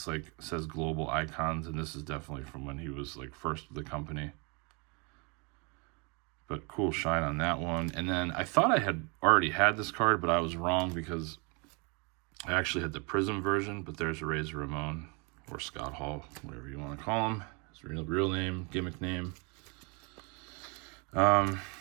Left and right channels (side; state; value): left; quieter; 32.0 dB